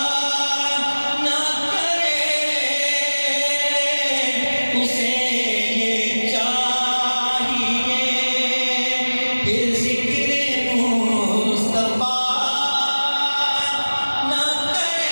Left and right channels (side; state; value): both; inverted; correlation -1.00